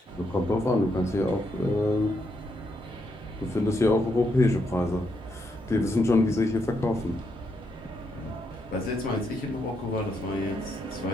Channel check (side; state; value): both; normal; correlation 0.79